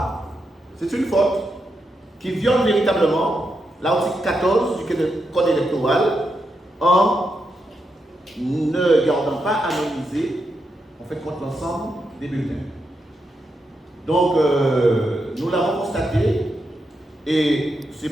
c'est une faute qui viole véritablement l'article 14 du Code électoral en ne gardant pas anonymisé, en fait, contre l'ensemble des bulletins. Donc, nous l'avons constaté, et c'est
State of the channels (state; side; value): normal; both; correlation 0.85